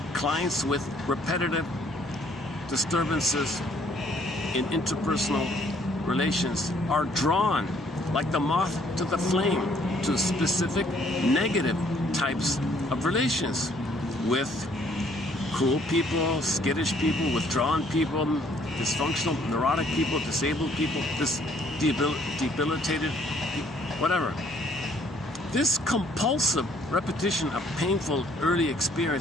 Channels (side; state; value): both; normal; correlation 0.63